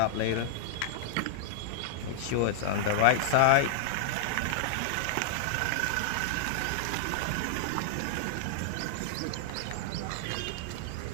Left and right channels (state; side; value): different; both; correlation -0.01